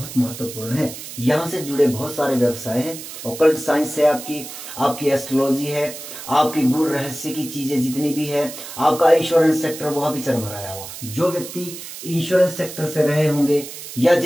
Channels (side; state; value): right; noise; hiss, 11 dB below the sound